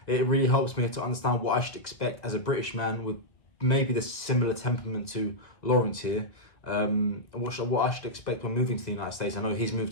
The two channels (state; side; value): late; right; 1.7 ms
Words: it really helps me to understand what I should expect as a British man with maybe the similar temperament to Laurence here. what I should expect when moving to the United States. I know he's moved